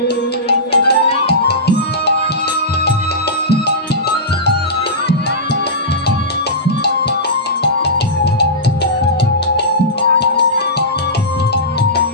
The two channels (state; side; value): normal; both; correlation -0.16